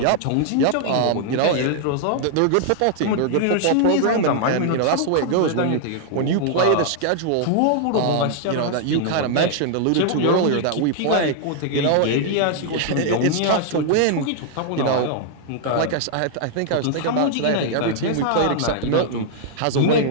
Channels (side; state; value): both; different; correlation -0.01